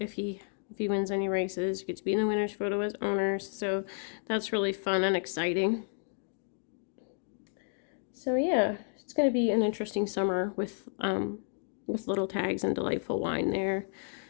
he wins any races, get to be in the winner's photo as owners. So that's really fun and exciting. So yeah, it's going to be an interesting summer with Little Tags and Delightful Wine there.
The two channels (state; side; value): silent; right; digital silence